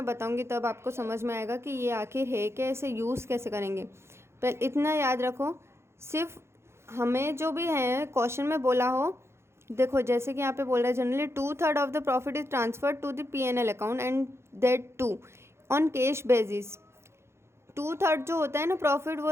बताऊंगी, तब आपको समझ में आएगा कि ये आखिर है क्या, इसे यूज़ कैसे करेंगे। पर इतना याद रखो, सिर्फ हमें जो भी है क्वेश्चन में बोला हो, देखो जैसे कि यहाँ पे बोल रहा है generally 2/3 of the profit is transferred to the P&L account and that too on cash basis. 2/3 जो होता है ना प्रॉफिट,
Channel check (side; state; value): left; late; 0.13 ms